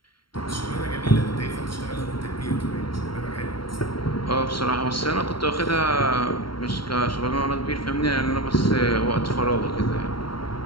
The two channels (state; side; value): late; right; 0.73 ms